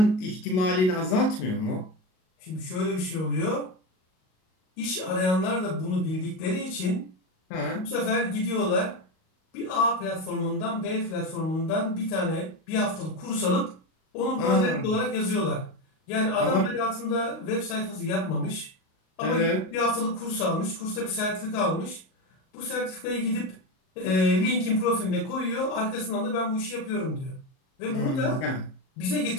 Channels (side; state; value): right; late; 38 ms